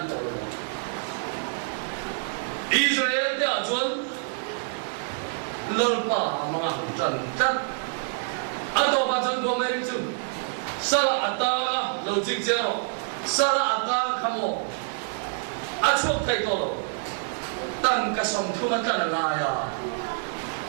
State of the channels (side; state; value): left; silent; 60 dB below the other